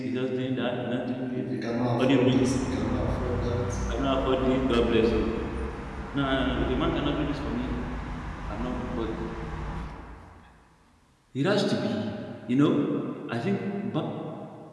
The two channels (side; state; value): both; identical; correlation 1.00